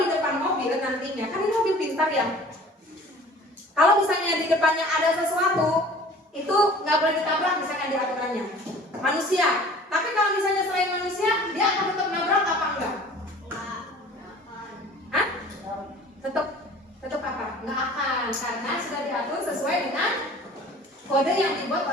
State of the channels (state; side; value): normal; both; correlation 0.47